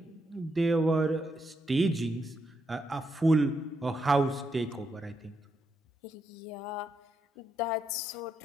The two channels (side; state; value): both; normal; correlation 0.80